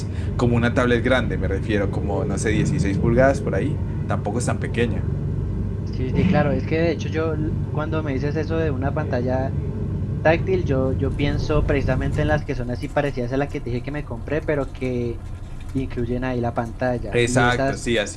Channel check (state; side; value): identical; both; correlation 1.00